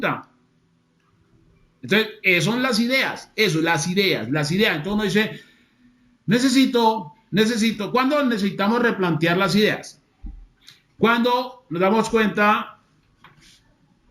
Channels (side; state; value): both; identical; correlation 1.00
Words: Entonces, son las ideas, las ideas. Entonces uno dice, necesito, ¿cuándo necesitamos replantear las ideas? Cuando nos damos cuenta